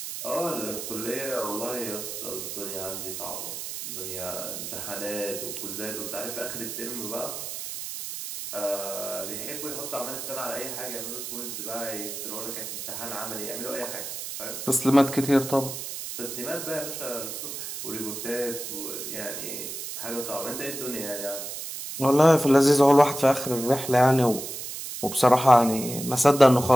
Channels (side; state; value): right; noise; hiss, 7 dB below the sound